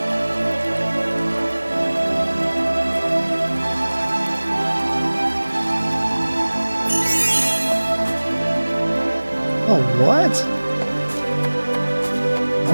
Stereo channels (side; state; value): both; inverted; correlation -1.00